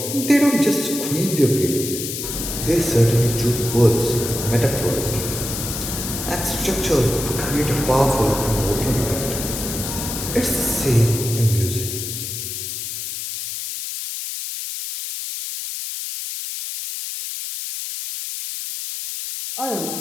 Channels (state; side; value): noise; left; hiss, 5 dB below the sound